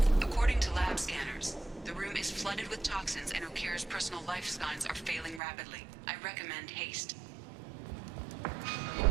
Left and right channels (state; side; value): drops out; left; at 5.4 s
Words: According to lab scanners, the room is flooded with toxins and Okeer's personal life signs are failing rapidly. I recommend haste.